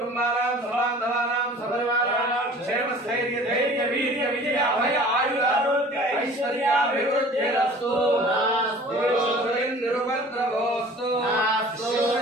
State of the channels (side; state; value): both; normal; correlation 0.46